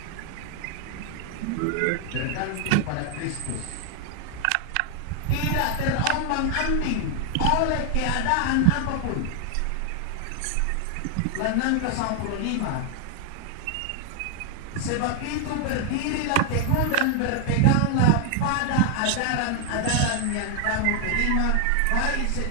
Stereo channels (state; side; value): different; both; correlation 0.00